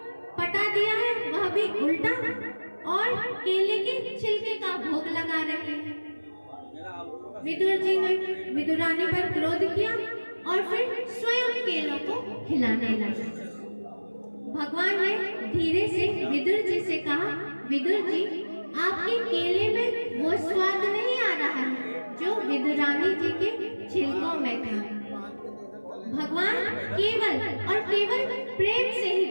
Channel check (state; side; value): inverted; both; correlation -1.00